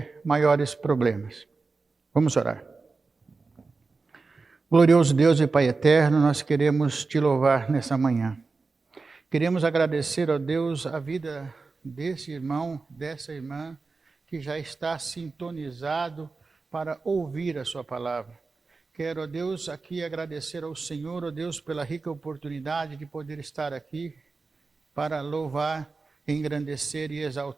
maiores problemas. Vamos orar. Glorioso Deus e Pai eterno, nós queremos te louvar nessa manhã. Queremos agradecer a Deus a vida desse irmão, dessa irmã, que já está sintonizado para ouvir a sua palavra. Quero, ó Deus, aqui agradecer ao Senhor, ó Deus, pela rica oportunidade de poder estar aqui para louvar, engrandecer e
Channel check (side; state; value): left; quieter; 4.1 dB